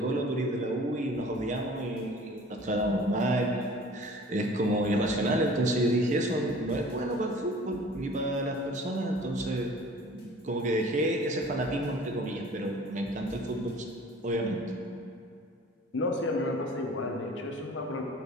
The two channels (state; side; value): normal; both; correlation 0.47